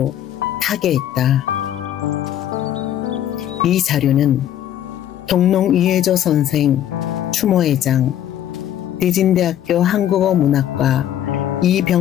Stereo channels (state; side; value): quieter; right; 11.3 dB